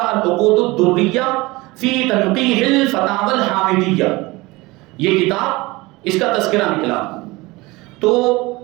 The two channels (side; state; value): left; quieter; 22.1 dB